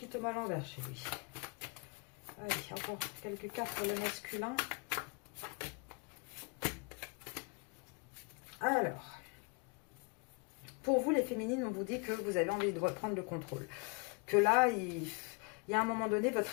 tombe à l'envers chez lui. Allez, encore quelques cartes pour le masculin. Alors, pour vous les féminines, on vous dit que vous avez envie de reprendre le contrôle. Que là, il y a un moment donné, votre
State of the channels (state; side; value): quieter; right; 32.2 dB